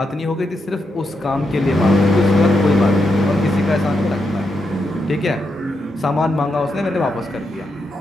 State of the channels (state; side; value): normal; both; correlation 0.83